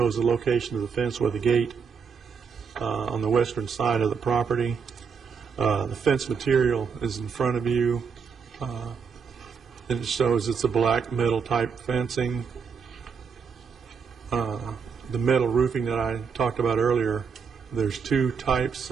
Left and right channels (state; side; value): quieter; left; 6.0 dB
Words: the location of the fence with the gate on the western side of the property. The fence material is in front of you, and it shows it's a black metal type fencing. The metal roofing that I talked about earlier, there's two types